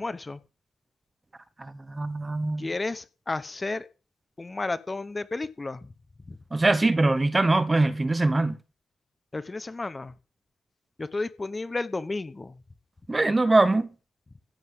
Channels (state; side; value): normal; both; correlation 0.98